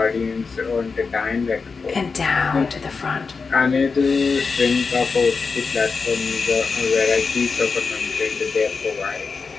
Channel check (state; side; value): quieter; right; 4.8 dB